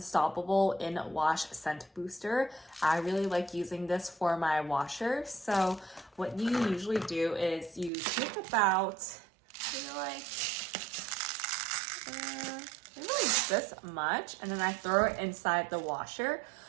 in Wash Scent Booster. I really like using this for my washer. So what you usually do is you take about, maybe like this much, and then I throw it inside the washer.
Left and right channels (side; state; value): left; drops out; at 7.9 s